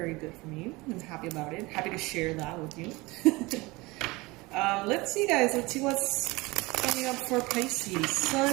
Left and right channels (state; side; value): quieter; left; 22.8 dB